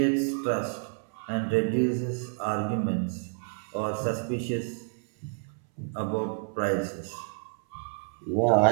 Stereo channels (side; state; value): left; silent; 59 dB below the other